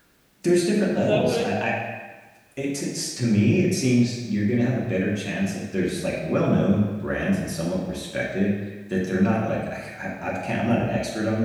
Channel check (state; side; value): identical; both; correlation 1.00